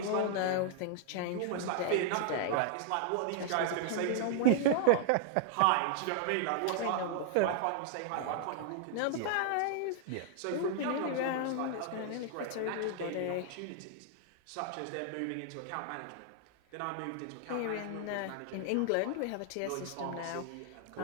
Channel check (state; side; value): different; both; correlation -0.01